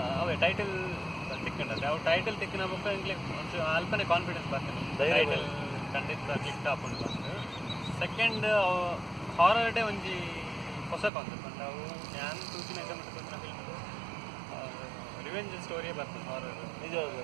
ಅವೇ ಟೈಟಲ್ ತಿಕ್ಕೊಂಡ್ರೆ ಅವು ಟೈಟಲ್ ತಿಕ್ಕಿನ ಬುಕ್ಕ ಇಂಗ್ಲಿ ಒಂಚೂರು ಅಲ್ಪನೇ ಕಾನ್ಫಿಡೆನ್ಸ್ ಬರ್ತದೆ. ಟೈಟಲ್ ಖಂಡಿತ ಕ್ಲಿಕ್ ಹಾಕೊಂಡು ಬಂದು ಸೆಕೆಂಡ್ ಹಾರರ್ ಡೇ ಒಂಜಿ ಹೊಸ ಕಾನ್ಸೆಪ್ಟ್ ಅಂದ್ರೆ ಅವು ನಾನು ತೂಚಿನ ಇದ್ದ ಮತ್ತು ತೂಚಿನ ಫಿಲ್ಮ್ ರಿವೆಂಜ್ ಸ್ಟೋರಿಯೇ ಬರ್ತದೆ ಹಾರರ್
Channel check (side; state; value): left; drops out; at 11.1 s